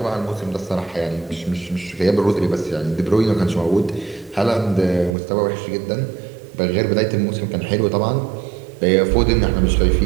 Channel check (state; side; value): drops out; left; at 5.2 s